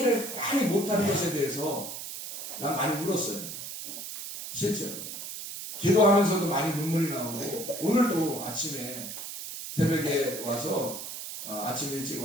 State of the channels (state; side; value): noise; right; hiss, 8 dB below the sound